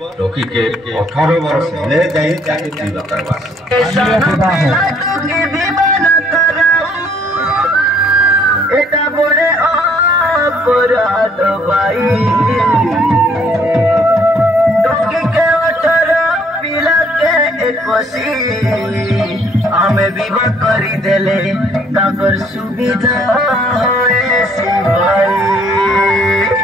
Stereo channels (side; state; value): both; normal; correlation 0.63